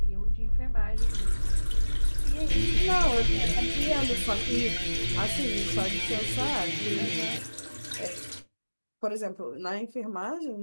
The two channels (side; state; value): both; inverted; correlation -1.00